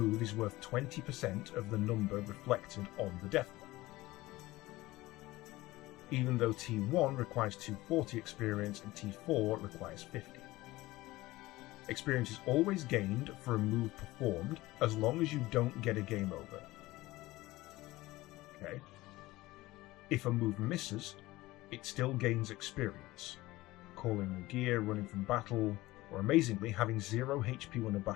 is worth 20% of the number reflected on the death blow. Even though T1 requires 240 experience and T4 requires 50. Experience is always gained for a move performed as long as you don't get a game over. Okay. If a move misses, it still gains experience. Calling a gear, running from battle, or amazingly, having 0 HP when a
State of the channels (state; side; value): quieter; right; 18.7 dB